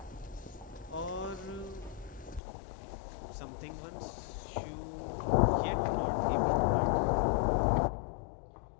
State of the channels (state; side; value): drops out; right; at 2.4 s